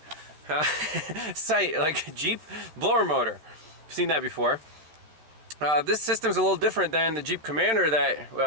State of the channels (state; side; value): late; left; 13 ms